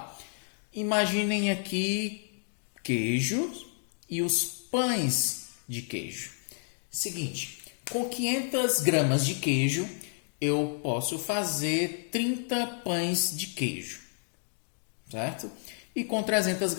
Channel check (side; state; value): right; silent; 57 dB below the other